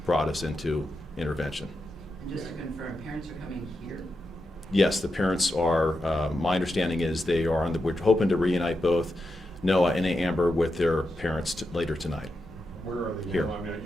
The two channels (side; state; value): both; normal; correlation 0.87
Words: brought us into intervention. And just to confirm, parents are coming here? Yes, the parents are, my understanding is they are we're hoping to reunite both Noah and Amber with their parents later tonight. Where are they? Here. I mean,